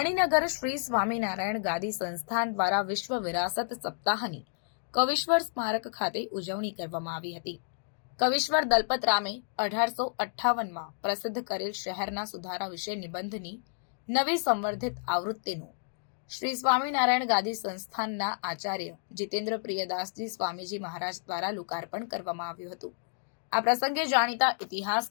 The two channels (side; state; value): right; silent; digital silence